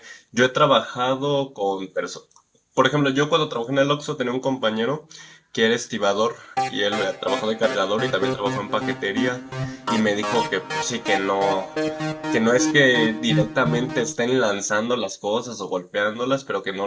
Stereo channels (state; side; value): identical; both; correlation 1.00